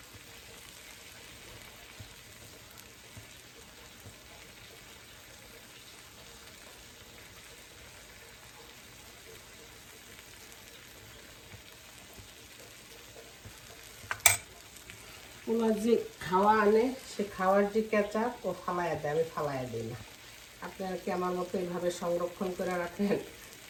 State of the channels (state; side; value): identical; both; correlation 1.00